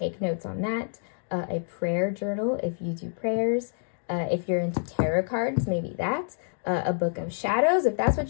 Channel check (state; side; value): silent; right; digital silence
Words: notes on that. A prayer journal if you do prayers. If you're into tarot cards, maybe that. A book of shadows, if that's